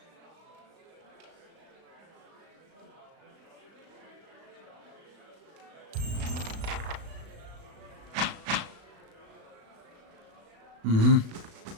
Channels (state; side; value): late; left; 36 ms